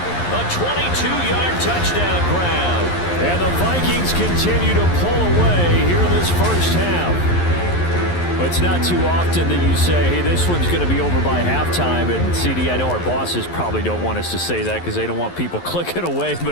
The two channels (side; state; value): right; late; 11 ms